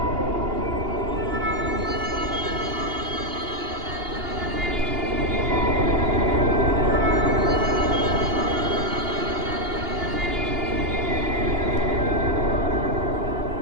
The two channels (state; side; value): late; left; 2.8 ms